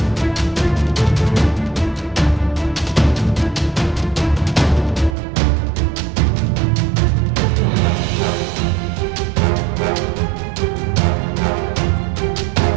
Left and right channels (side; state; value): left; drops out; at 5.2 s